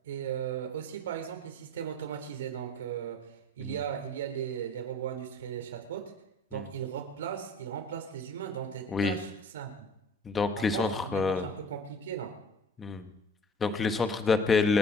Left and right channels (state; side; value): normal; both; correlation 0.45